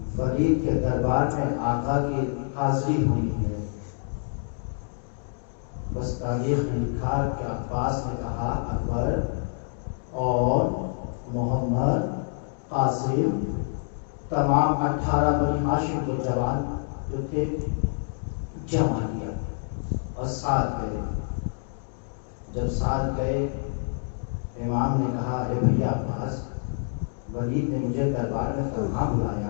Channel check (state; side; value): silent; right; digital silence